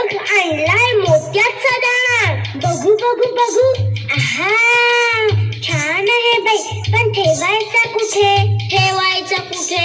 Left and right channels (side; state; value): both; identical; correlation 1.00